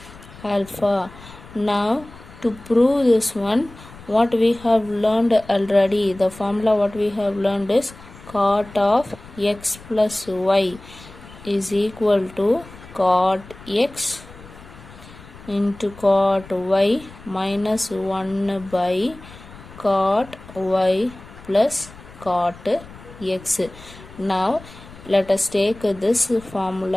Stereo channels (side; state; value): left; noise; rumble, 19 dB below the sound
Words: alpha. Now to prove this one, what we have learned already, the formula what we have learned is cot of x plus y is equal to cot x into cot y minus 1 by cot y plus cot x. Now let us take this